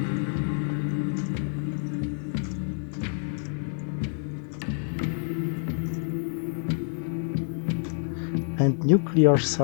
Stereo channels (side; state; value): right; silent; digital silence